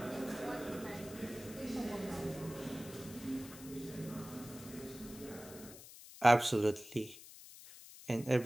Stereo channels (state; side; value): noise; left; hiss, 16 dB below the sound